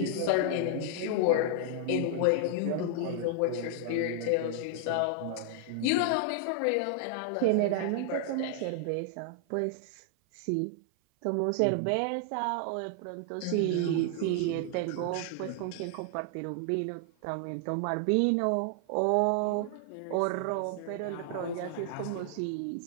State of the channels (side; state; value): both; different; correlation 0.00